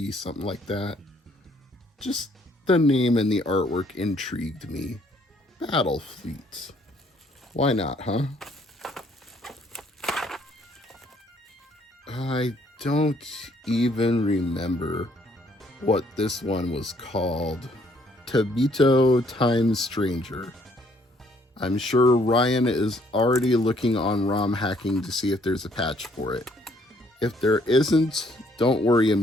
something like that. Just the name and the artwork intrigued me. Battlefleet. Why not, huh? I don't even remember what this one was called. Tabito Time Stranger. I'm sure Ryan is already looking on ROM hacking to see if there's a patch for it. If there isn't, don't worry,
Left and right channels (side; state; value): both; normal; correlation 0.65